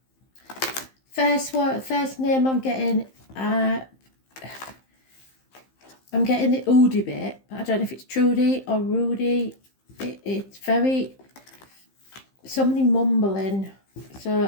First name I'm getting the Oodie bit, but I don't know if it's Trudy or Rudy. It's very, somebody mumbling,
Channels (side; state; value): right; late; 15 ms